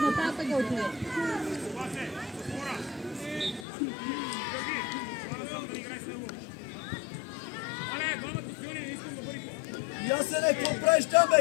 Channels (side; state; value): right; drops out; at 3.7 s